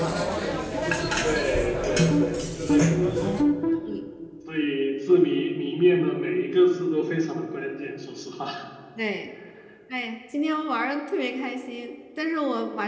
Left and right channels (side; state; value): both; identical; correlation 1.00